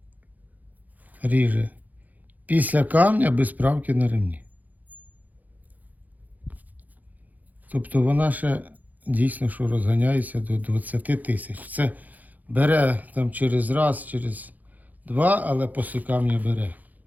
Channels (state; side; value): late; left; 0.081 ms